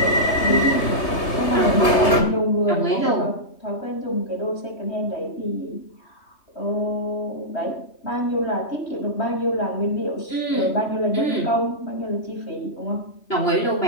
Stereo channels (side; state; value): right; late; 3.3 ms